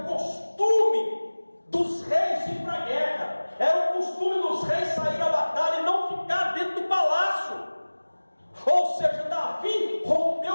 o costume dos reis ir para a guerra, era o costume dos reis sair à batalha e não ficar dentro do palácio. Ou seja, Davi rompeu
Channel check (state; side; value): inverted; both; correlation -1.00